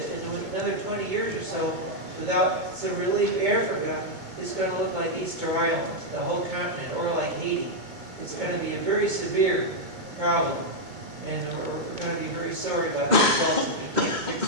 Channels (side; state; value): left; late; 2.2 ms